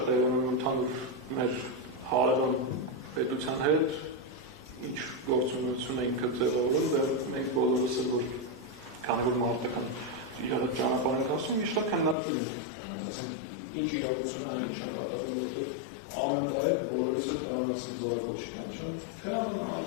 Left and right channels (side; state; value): right; drops out; at 12.2 s